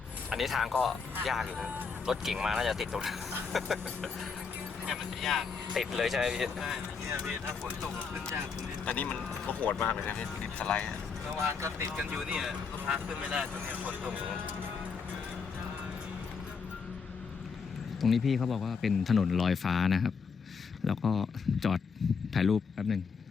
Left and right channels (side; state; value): right; quieter; 5.5 dB